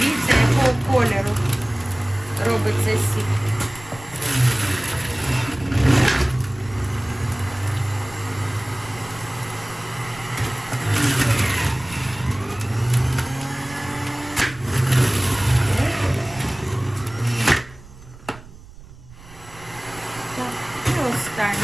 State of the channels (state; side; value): noise; right; rumble, 20 dB below the sound